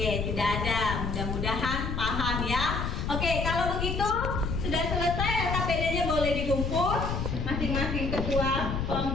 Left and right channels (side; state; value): left; noise; rumble, 2 dB below the sound